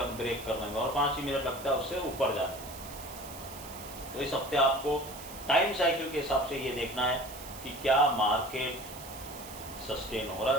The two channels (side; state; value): right; noise; hiss, 14 dB below the sound